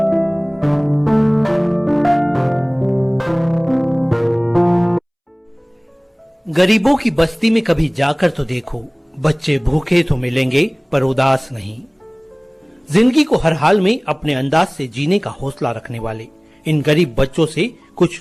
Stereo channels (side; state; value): both; identical; correlation 1.00